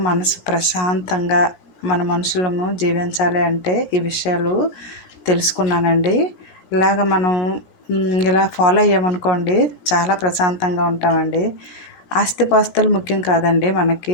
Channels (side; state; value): right; late; 17 ms